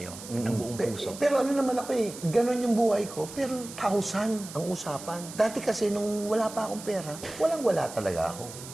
ng buong puso? Pero ano naman ako eh, ganon yung buhay ko, pero 1,000 ang usapan. Dati kasi nung wala pa akong pera, walang-wala talaga ako.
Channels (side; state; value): right; noise; hiss, 13 dB below the sound